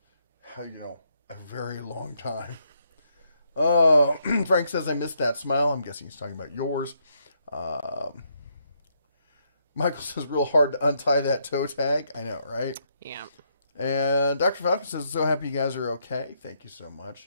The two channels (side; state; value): both; inverted; correlation -0.76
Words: a very long time. Frank says, I missed that smile. I'm guessing he's talking about yours. Michael says, real hard to untie that toe tag. I know, right? Yeah. And Dr. Falcon says, so happy you guys are okay. Thank you so